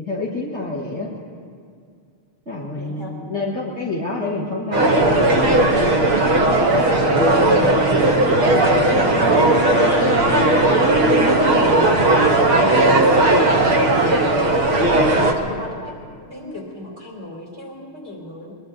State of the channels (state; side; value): late; left; 6.4 ms